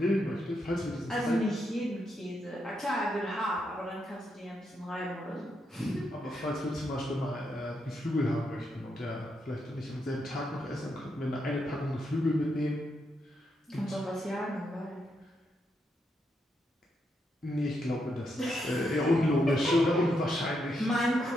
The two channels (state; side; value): normal; both; correlation 0.81